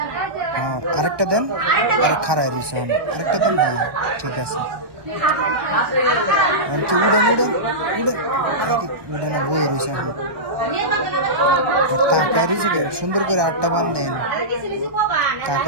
হ্যাঁ, আরেকটা দেন। আরে খারাই রয়েছে, আরেকটা দেন। হ্যাঁ ঠিক আছে। কি উড়েন উড়েন উড়েন, উড়ে না বয়ে রয়েছে এখন। তাকায় রয়েছে কে সুন্দর করে, আটটা বান দেন।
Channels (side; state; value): left; late; 1.2 ms